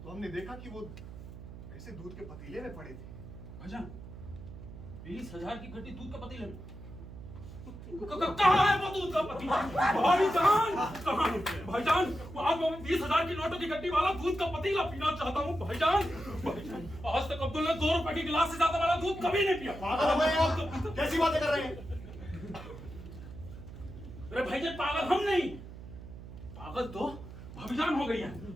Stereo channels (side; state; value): right; noise; hum, 13 dB below the sound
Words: हमने देखा कि वो ऐसे दूध के पतीले में पड़े थे। भाईजान 20,000 की गड्डी दूध का पतीला में? कहाँ है वो दूध का पतीला? भाईजान कहाँ है? भाईजान आज मैं 20,000 की नोटों की गड्डी वाला दूध का पतीला पीना चाहता हूँ भाईजान। भाईजान आज तक अब्दुल ने 2 रुपए की गिलास से ज्यादा वाला दूध कभी नहीं पिया। पागल हो गए आप? कैसी बातें कर रहे हैं? अरे भाईजान पागल हम नहीं, पागल तो भाभीजान हो गई है।